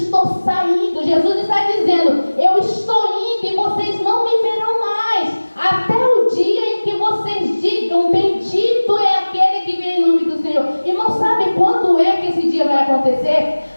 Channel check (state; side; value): inverted; both; correlation -1.00